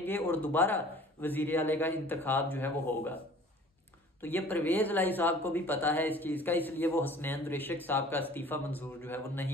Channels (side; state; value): both; normal; correlation 0.48